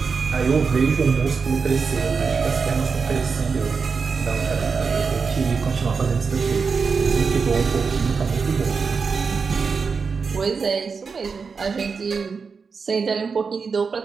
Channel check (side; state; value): left; quieter; 5.2 dB